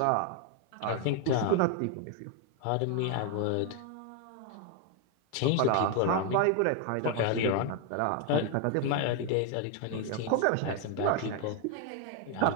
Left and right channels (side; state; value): both; different; correlation 0.01